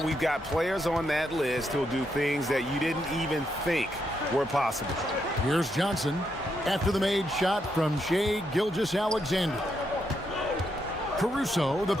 We've got players on that list who'll do things that you didn't even think were possible. Here's Johnson after the made shot from Shai Gilgeous-Alexander. Caruso, the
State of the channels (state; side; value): normal; both; correlation 0.80